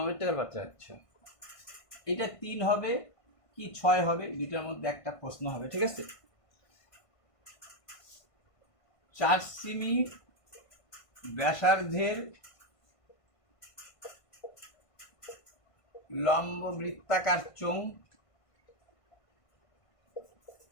পাত্রে, আচ্ছা এটা 3 হবে কি 6 হবে? দুইটার মধ্যে একটা প্রশ্ন হবে, ঠিক আছে? 4 সেমি ব্যাসার্ধের লম্ববৃত্তাকার চোঙ,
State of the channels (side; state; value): right; late; 1.5 ms